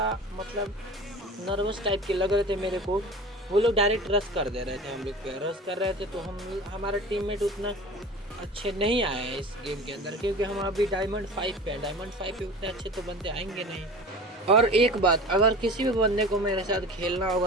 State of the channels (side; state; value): both; normal; correlation 0.37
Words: मतलब नर्वस टाइप के लग रहे थे मेरे को। वो लोग डायरेक्ट रश कर दे रहे थे, हम लोग पे रश कर रहे थे। तो हमारा टीममेट उतना अच्छे नहीं आए हैं इस गेम के अंदर, क्योंकि हम अभी डायमंड 5 पे हैं। डायमंड 5 पे उतने अच्छे तो बंदे आएंगे नहीं। और एक बात, अगर किसी भी बंदे को मेरे साथ खेलना